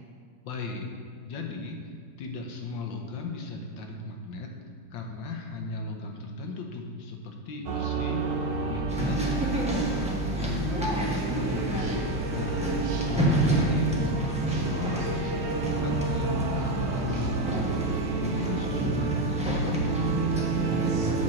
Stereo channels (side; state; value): both; normal; correlation 0.10